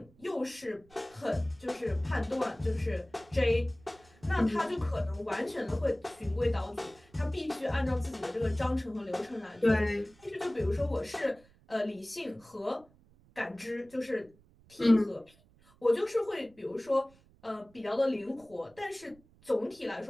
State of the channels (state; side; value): noise; right; rumble, 28 dB below the sound